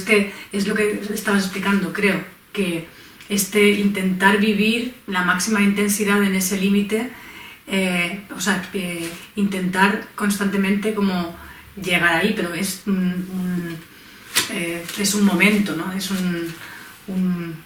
lo que estabas explicando, creo, que intentar vivir la máxima intensidad en ese límite, intentar constantemente como llegar ahí, pero es un momento, ¿no? Es un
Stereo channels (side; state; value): both; identical; correlation 1.00